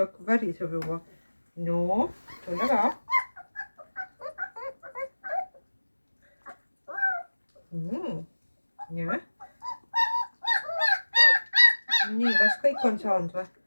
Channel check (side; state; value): both; inverted; correlation -1.00